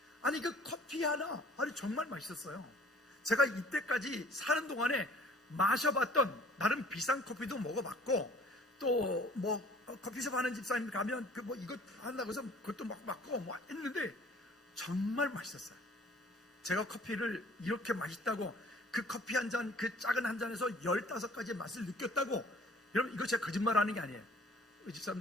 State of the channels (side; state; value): both; normal; correlation 0.52